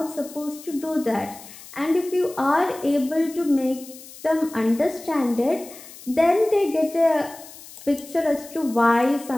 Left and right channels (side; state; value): left; noise; hiss, 18 dB below the sound